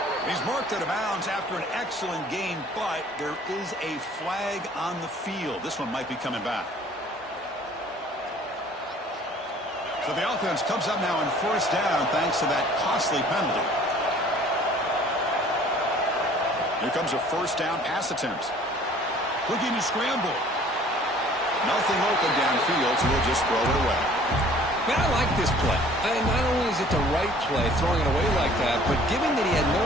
He's marked out of bounds after an excellent game, but there is a flag on the field. This one might be coming back. So the offense comes up now on first down thanks to that costly penalty. Here comes a first down pass attempt. Looking to scramble. Nothing open downfield, so he'll just throw it away. Man, I like this play. Not only is it the right play, throwing it away like that, but given that he had no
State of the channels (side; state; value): both; normal; correlation 0.53